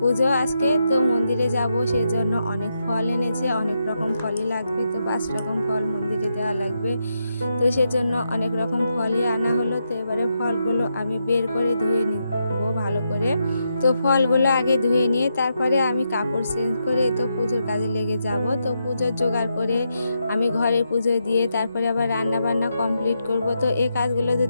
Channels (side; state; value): both; inverted; correlation -0.83